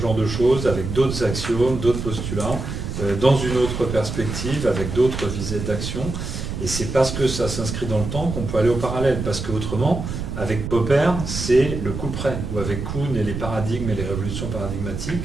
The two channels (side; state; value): right; noise; rumble, 5 dB below the sound